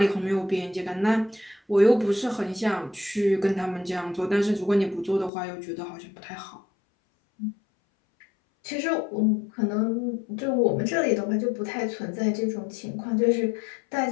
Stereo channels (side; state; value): right; drops out; at 5.3 s